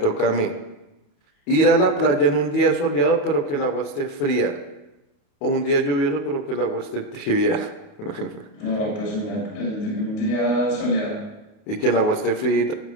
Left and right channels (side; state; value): right; late; 28 ms